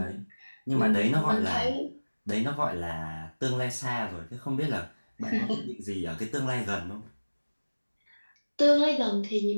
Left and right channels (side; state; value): both; inverted; correlation -1.00